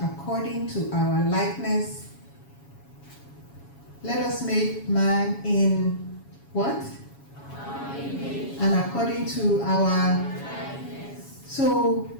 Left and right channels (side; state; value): right; late; 7.2 ms